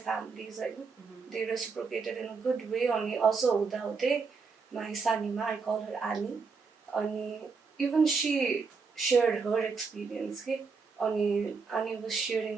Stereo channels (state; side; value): quieter; left; 4.9 dB